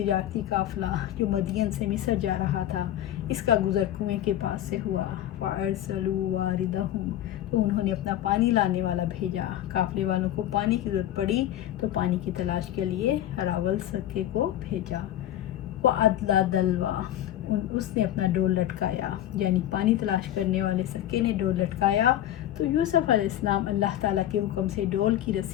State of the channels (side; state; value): right; quieter; 12.4 dB